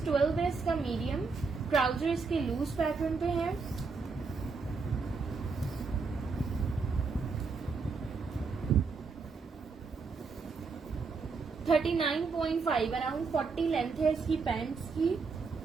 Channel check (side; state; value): left; quieter; 4.7 dB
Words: 12 है इसका, मीडियम। ट्राउजर इसके लूज पैटर्न पे है। $39.5 अराउंड 40 लेंथ है इसकी पैंट्स की।